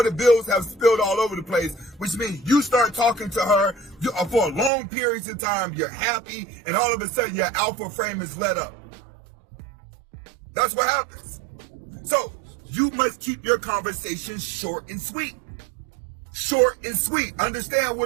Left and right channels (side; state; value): left; drops out; at 4.7 s